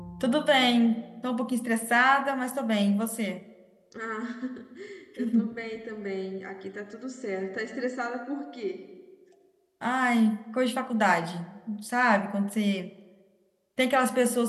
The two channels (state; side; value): identical; both; correlation 1.00